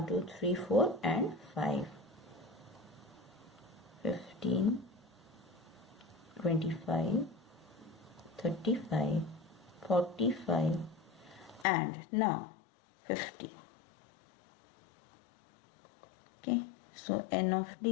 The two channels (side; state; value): right; drops out; at 11.7 s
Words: 2, 3, 4 and 5. 15, 25, 35, 45 and now 50. Okay, so N of